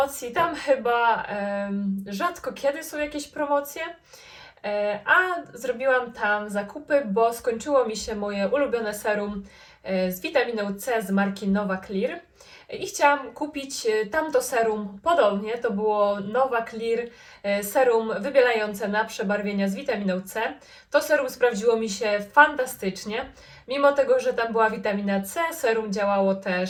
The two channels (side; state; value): both; identical; correlation 1.00